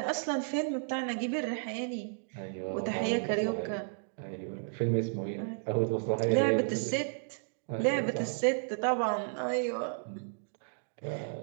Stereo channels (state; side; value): silent; left; digital silence